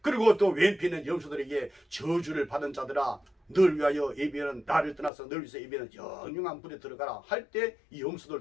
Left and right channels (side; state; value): right; drops out; at 5.1 s